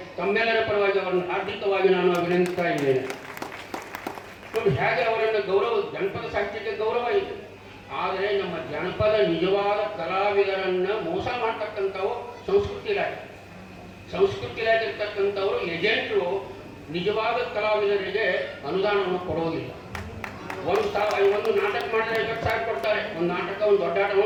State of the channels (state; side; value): identical; both; correlation 1.00